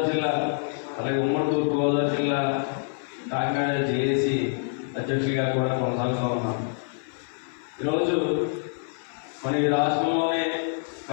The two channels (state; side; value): silent; right; 55 dB below the other